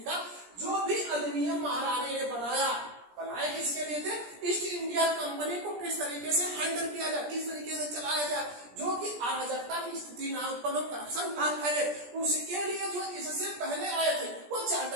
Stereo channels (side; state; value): left; late; 17 ms